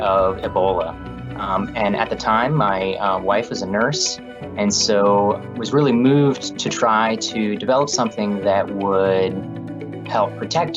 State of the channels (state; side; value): identical; both; correlation 1.00